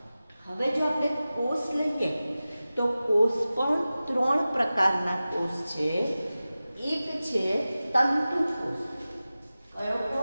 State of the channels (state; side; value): inverted; both; correlation -0.96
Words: હવે જો આપણે કોષ લઈએ તો કોષ પણ 3 પ્રકારના કોષ છે. એક છે તંતુ કોષ. કયો